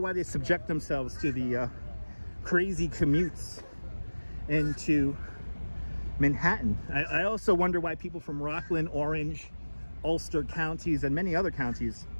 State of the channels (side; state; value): both; inverted; correlation -1.00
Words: they subject themselves to the crazy commutes into Manhattan. I also wonder why people from Rockland, Orange, Ulster counties, and many other counties